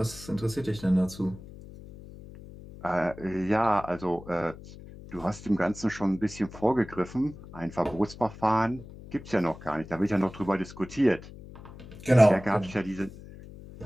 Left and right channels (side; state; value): left; noise; hum, 16 dB below the sound